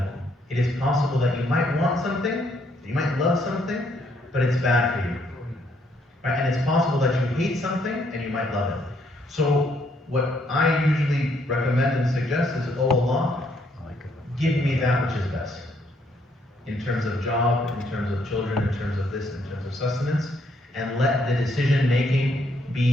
It is possible that you might want something, you might love something, but it's bad for you. Right? And it's possible that you hate something and you might love it. So what I usually recommend and suggest is, oh Allah, give me that which is best. In terms of job, in terms of children, in terms of this, in terms of sustenance, and let the decision making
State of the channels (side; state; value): both; normal; correlation 0.70